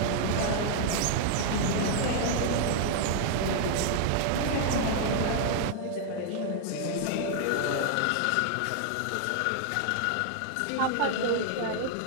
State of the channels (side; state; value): both; different; correlation 0.00